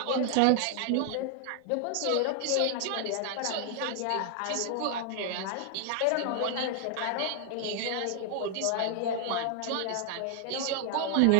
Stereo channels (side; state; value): both; different; correlation 0.00